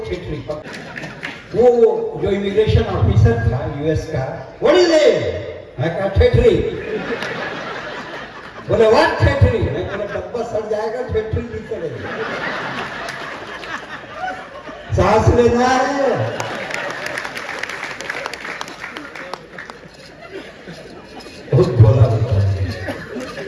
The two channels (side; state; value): both; identical; correlation 1.00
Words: खिचड़ी वो जो इमिग्रेशन ऑफिसर था यूएस का, व्हाट इज इट? मैं कहा ठेठरी। बोले व्हाट ठेठरी? मैं बोला डब्बा सड़ जाएगा, ठेठरी नहीं चलेगी। सांस लेना है। बहुत बोला होता है।